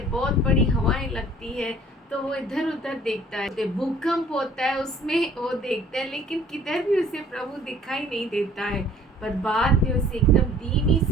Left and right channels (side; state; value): both; normal; correlation 0.54